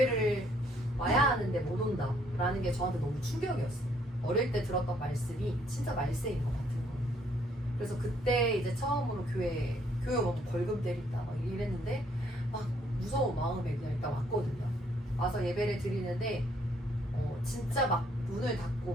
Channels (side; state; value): both; normal; correlation 0.67